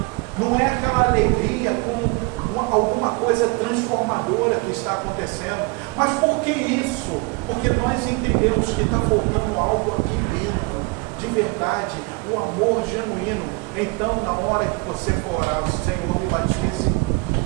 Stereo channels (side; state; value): left; quieter; 26.8 dB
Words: não é aquela alegria com alguma coisa transformadora que está acontecendo. Mas por que isso? Porque nós entendemos que está faltando algo aqui dentro, de verdade, o amor genuíno. Então, na hora que você for orar, Senhor, me batize